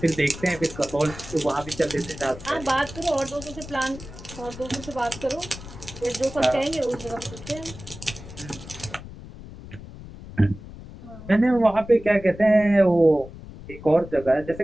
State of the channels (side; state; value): left; noise; rumble, 15 dB below the sound